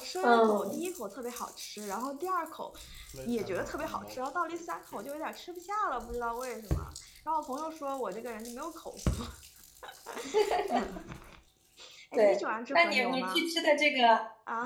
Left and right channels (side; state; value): both; identical; correlation 1.00